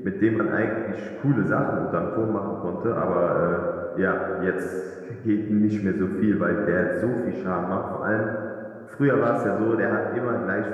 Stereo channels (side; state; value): both; identical; correlation 1.00